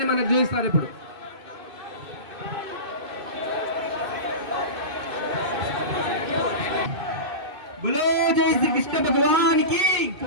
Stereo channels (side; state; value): left; late; 2.6 ms